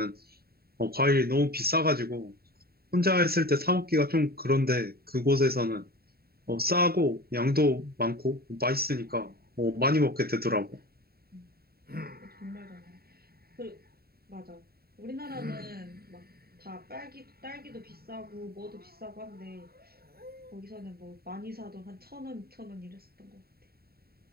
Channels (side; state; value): left; late; 0.45 ms